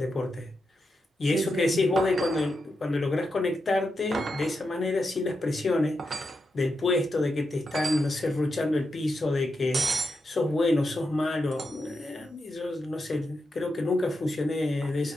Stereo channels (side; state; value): both; normal; correlation 0.86